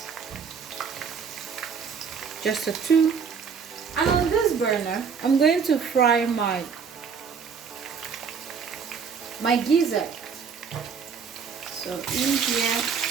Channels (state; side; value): quieter; left; 6.2 dB